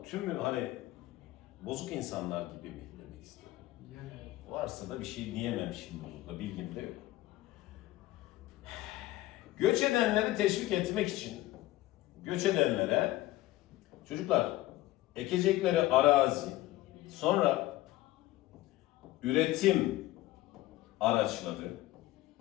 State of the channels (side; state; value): right; quieter; 16.5 dB